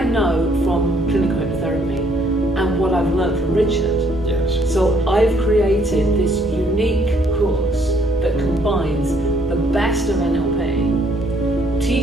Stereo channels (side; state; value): both; normal; correlation 0.65